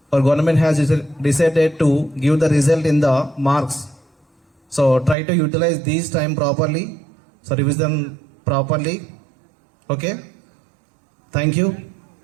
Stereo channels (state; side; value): drops out; left; at 5.2 s